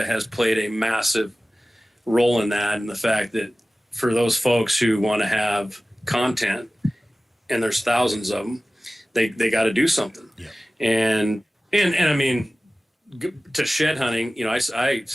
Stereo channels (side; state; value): both; normal; correlation 0.97